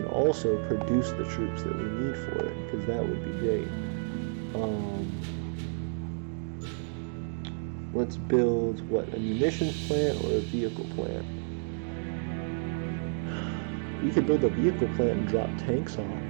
also produce the troops that we need for it, because that would be great. Let's build, what, a munitions plant or a vehicle plant? We could build a vehicle plant and drop tanks off,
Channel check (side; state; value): left; silent; 57 dB below the other